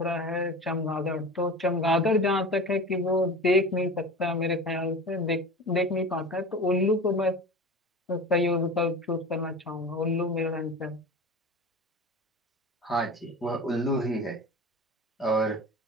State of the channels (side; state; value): both; normal; correlation 0.33